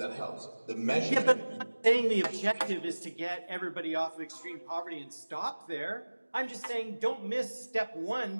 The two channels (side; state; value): both; inverted; correlation -1.00